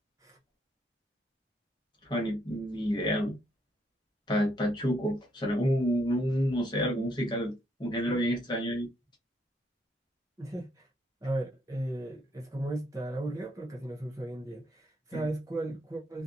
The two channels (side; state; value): both; normal; correlation 0.73